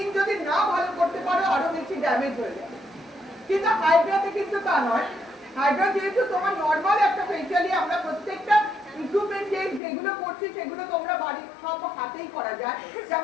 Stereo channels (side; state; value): right; drops out; at 9.8 s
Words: যদি না ভালো করতে পারো আরো বেশি ড্যামেজ হয়ে যাবে, কিন্তু হাইড্রাতে কিন্তু তা নয়। হাইড্রা যেহেতু তোমার নরমাল একটা ফেশিয়ালি, আমরা প্রত্যেকটা ইকুইপমেন্ট যেগুলো করছি সেগুলো তোমরা বাড়ির সব হাতেই করা যায়,